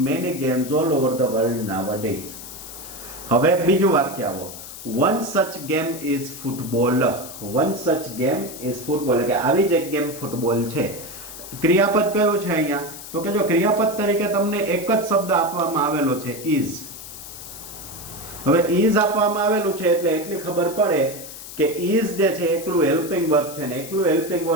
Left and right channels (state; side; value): noise; left; hiss, 13 dB below the sound